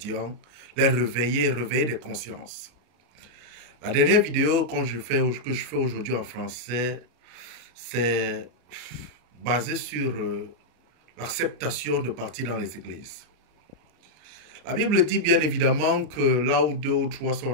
les réveiller des consciences. La dernière vidéo que je fais aujourd'hui en français, c'est basé sur l'acceptation de partir dans les églises. La Bible dit bien évidemment que là où deux ou trois sont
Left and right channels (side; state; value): left; late; 33 ms